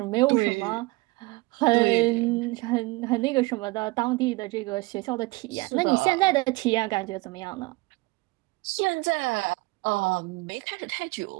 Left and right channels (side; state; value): left; quieter; 22.8 dB